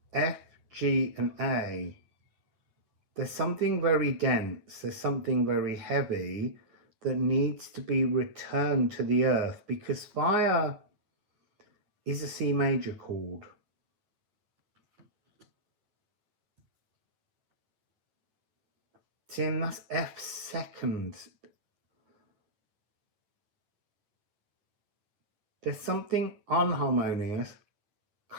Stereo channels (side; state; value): left; late; 9.8 ms